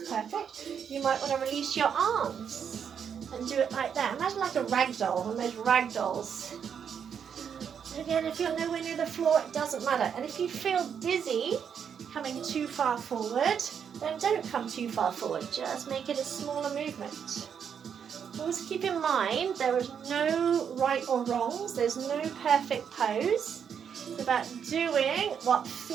perfect. You might want to release your arms and do it like that. Imagine like a rag doll, one of those rag dolls. Again, if you're nowhere near the floor, it doesn't matter. And if you feel dizzy coming too far forward, then don't come too far forward. Just make it a smaller movement. Always keep in mind there is no right or wrongs. There's no perfect pose. It's about doing what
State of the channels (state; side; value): quieter; left; 7.6 dB